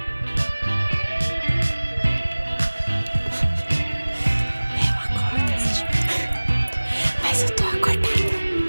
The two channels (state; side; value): inverted; both; correlation -1.00